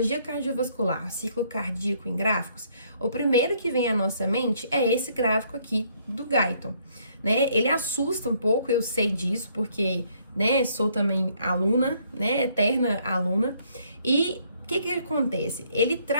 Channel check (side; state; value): both; inverted; correlation -0.67